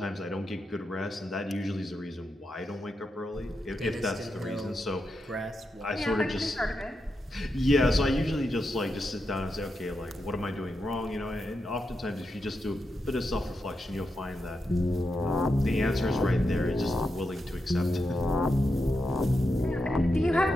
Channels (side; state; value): both; normal; correlation 0.86